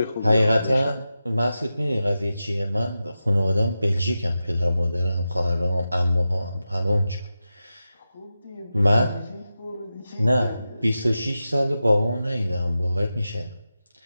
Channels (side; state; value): both; inverted; correlation -0.92